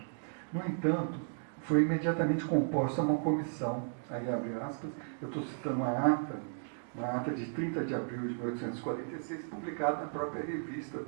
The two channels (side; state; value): left; silent; digital silence